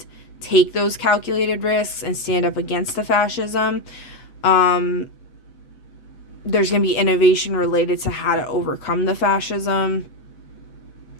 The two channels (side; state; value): right; late; 8.0 ms